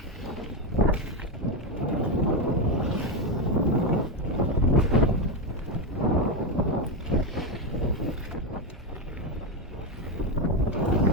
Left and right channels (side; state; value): both; normal; correlation 0.09